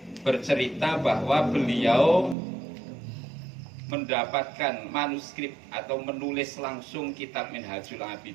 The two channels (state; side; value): drops out; left; at 2.4 s